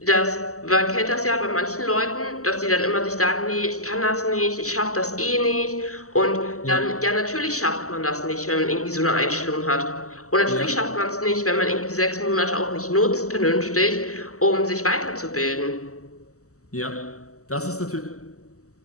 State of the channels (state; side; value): late; right; 0.65 ms